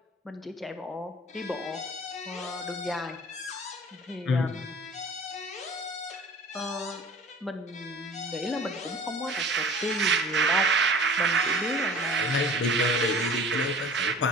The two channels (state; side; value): normal; both; correlation 0.44